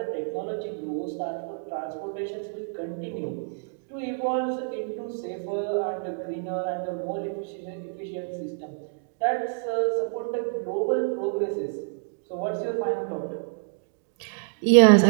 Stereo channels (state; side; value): silent; left; digital silence